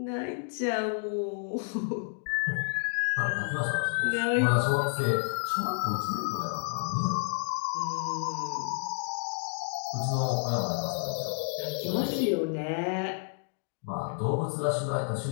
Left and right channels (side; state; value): right; silent; 58 dB below the other